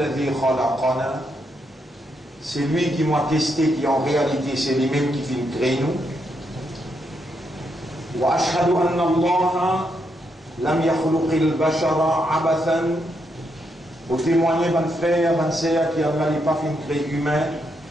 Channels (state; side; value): normal; both; correlation 0.79